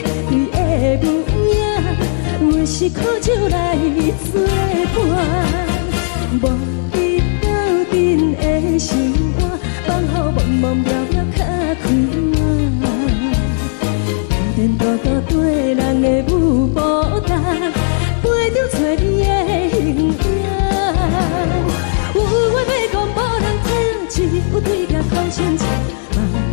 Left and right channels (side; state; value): right; silent; 65 dB below the other